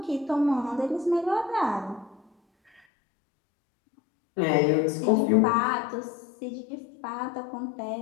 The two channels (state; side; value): drops out; right; at 2.8 s